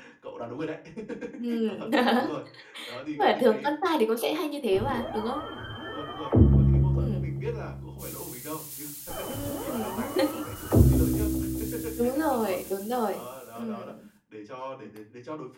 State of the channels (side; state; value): both; identical; correlation 1.00